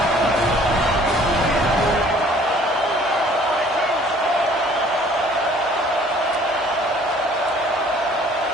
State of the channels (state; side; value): normal; both; correlation 0.55